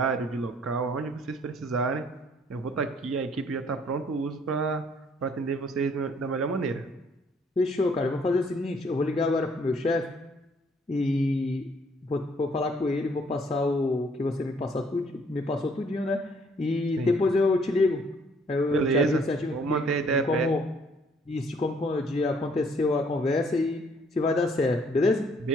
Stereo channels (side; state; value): both; normal; correlation 0.63